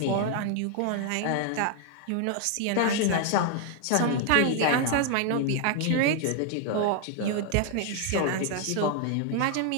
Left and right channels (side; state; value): both; different; correlation 0.00